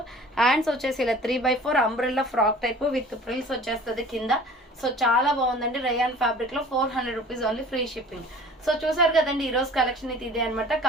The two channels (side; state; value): both; normal; correlation 0.45